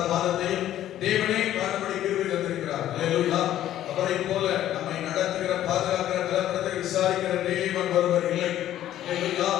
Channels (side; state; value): right; quieter; 12.4 dB